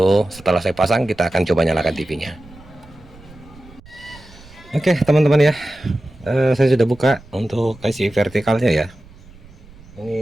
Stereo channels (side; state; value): right; noise; rumble, 22 dB below the sound